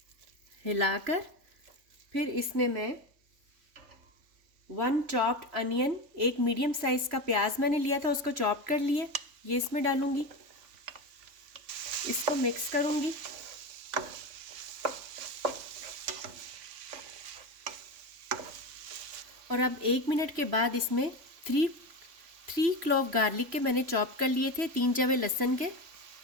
हिलाकर फिर इसमें मैं 1 चॉप्ड अनियन, एक मीडियम साइज का प्याज मैंने लिया था, उसको चॉप कर लिया, ये इसमें डालूंगी। इसको मिक्स करूंगी। और अब 1 मिनट के बाद इसमें 3 क्लॉव गार्लिक के मैंने चॉप कर लिए थे, 3 जवे लहसुन के,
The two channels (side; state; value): left; late; 3.5 ms